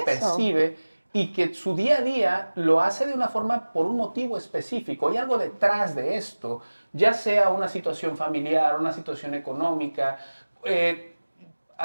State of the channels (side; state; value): both; inverted; correlation -1.00